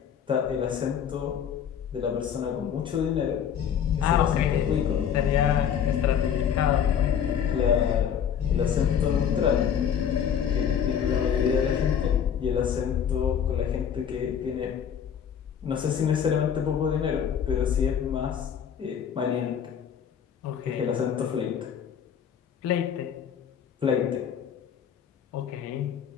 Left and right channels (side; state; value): right; quieter; 8.2 dB